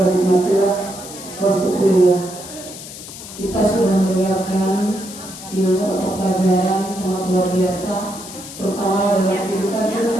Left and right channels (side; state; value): left; noise; hiss, 13 dB below the sound